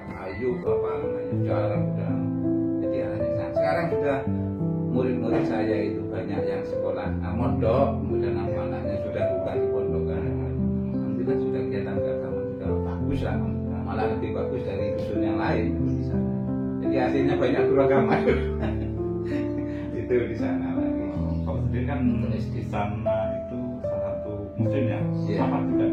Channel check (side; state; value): both; identical; correlation 1.00